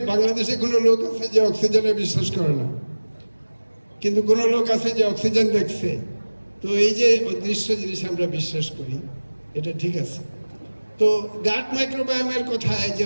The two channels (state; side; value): inverted; both; correlation -1.00